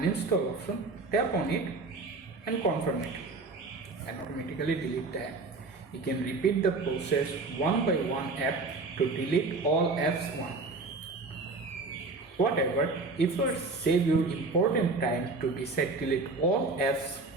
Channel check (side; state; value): left; quieter; 3.7 dB